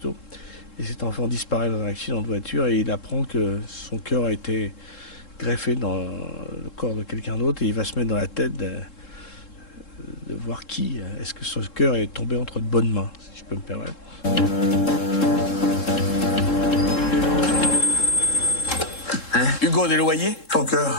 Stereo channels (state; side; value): late; right; 3.7 ms